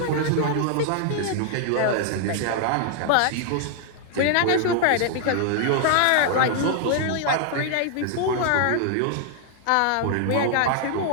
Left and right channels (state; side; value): different; both; correlation 0.00